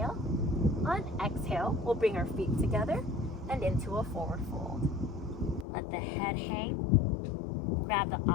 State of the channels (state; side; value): drops out; right; at 5.7 s